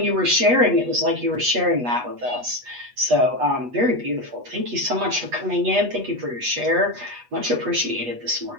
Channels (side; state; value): left; late; 8.2 ms